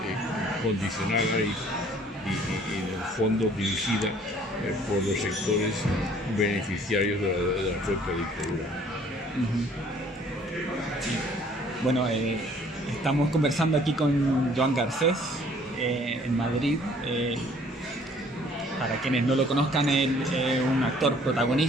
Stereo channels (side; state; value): both; normal; correlation 0.57